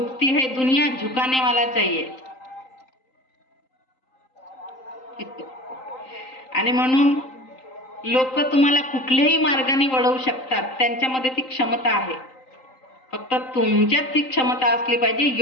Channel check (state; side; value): late; right; 3.8 ms